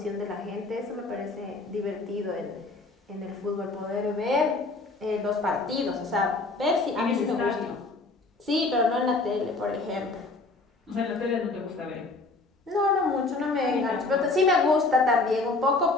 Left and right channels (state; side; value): quieter; right; 3.4 dB